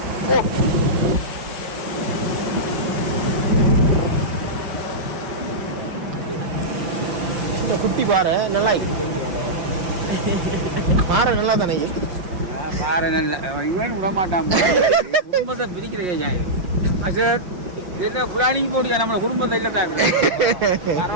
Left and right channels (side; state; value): left; late; 5.7 ms